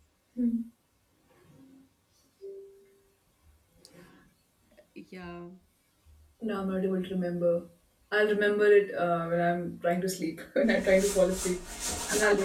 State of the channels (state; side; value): identical; both; correlation 1.00